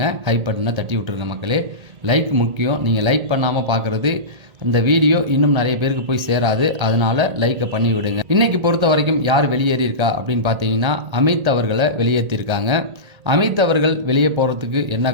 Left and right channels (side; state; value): left; late; 1.8 ms